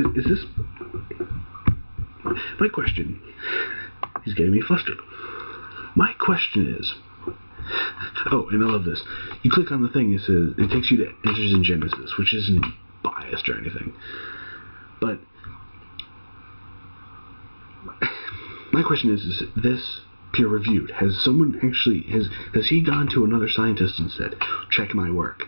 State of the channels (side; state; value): both; inverted; correlation -1.00